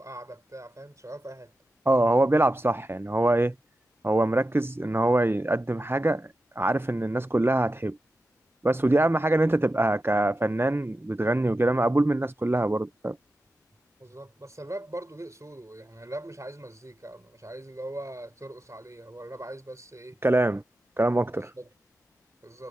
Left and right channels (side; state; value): both; normal; correlation 0.91